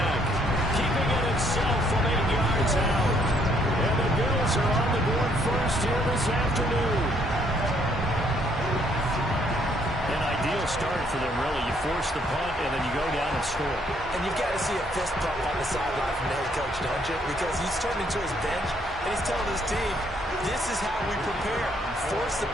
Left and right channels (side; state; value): both; normal; correlation 0.68